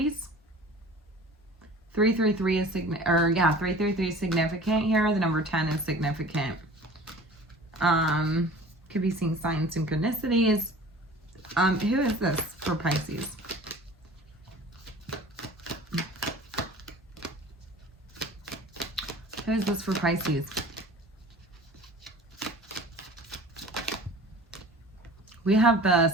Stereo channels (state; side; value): normal; both; correlation 0.43